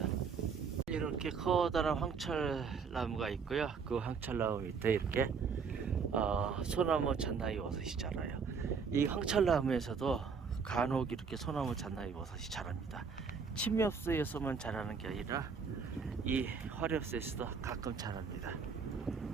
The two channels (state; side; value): quieter; left; 5.7 dB